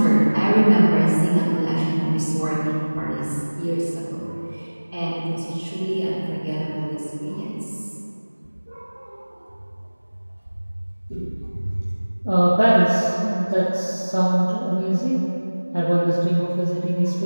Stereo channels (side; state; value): both; inverted; correlation -1.00